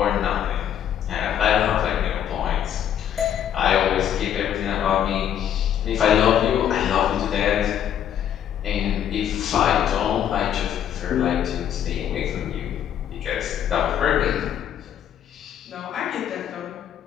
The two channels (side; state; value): right; quieter; 9.8 dB